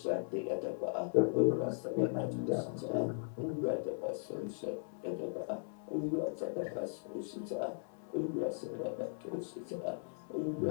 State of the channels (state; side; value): silent; right; 52 dB below the other